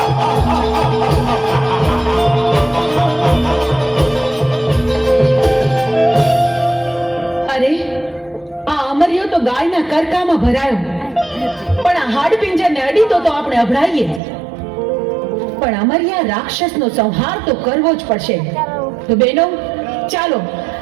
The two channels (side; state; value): left; drops out; at 14.2 s